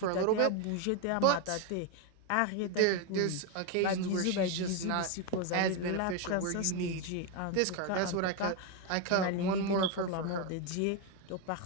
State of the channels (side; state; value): both; different; correlation 0.02